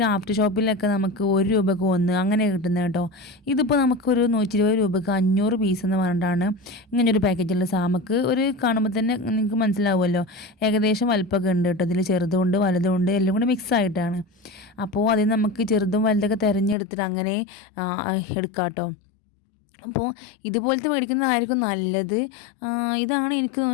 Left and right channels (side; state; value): right; drops out; at 16.8 s